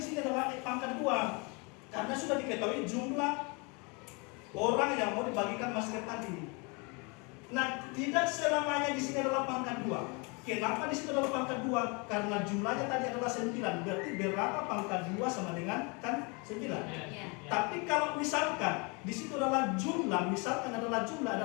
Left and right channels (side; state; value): right; quieter; 31.2 dB